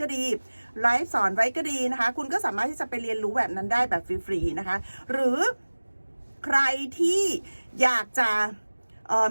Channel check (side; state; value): both; inverted; correlation -1.00